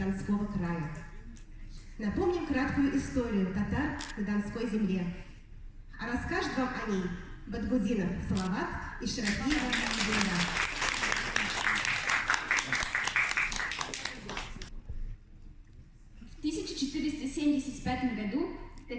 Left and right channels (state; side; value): identical; both; correlation 1.00